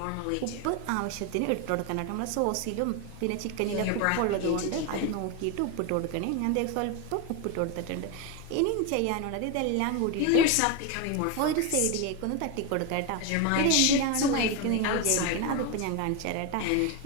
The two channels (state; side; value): different; both; correlation 0.02